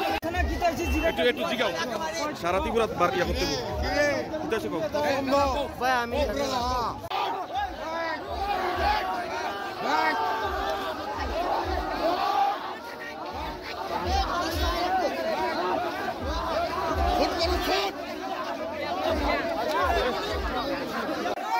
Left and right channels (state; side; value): identical; both; correlation 1.00